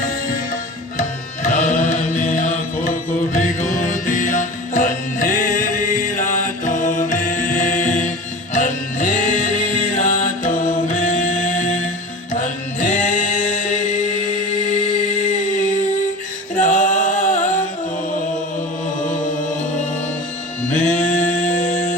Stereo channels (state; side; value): normal; both; correlation 0.34